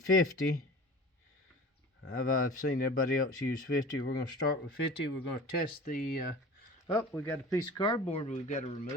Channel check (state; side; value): normal; both; correlation 0.39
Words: 50. I've seen everybody else use 50. We're going to start with 50. We're going to test the oh, we got a piece of cardboard we've got to